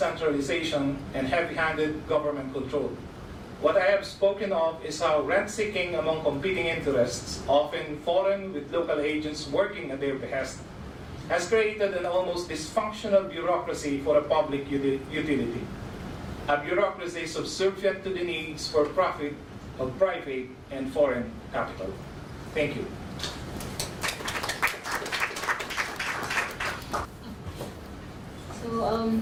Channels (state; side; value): identical; both; correlation 1.00